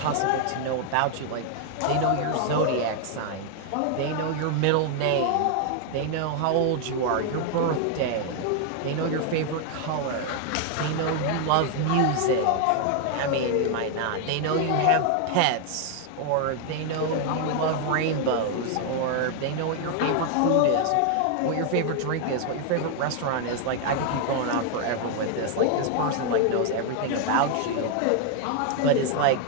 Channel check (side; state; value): both; different; correlation 0.00